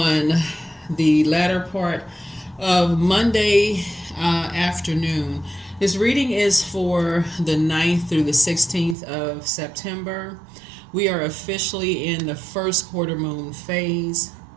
the latter part of Monday afternoon. This reading is for the 9th through the 16th of September. We are officially in the first quarter moon phase.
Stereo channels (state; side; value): drops out; left; at 9.0 s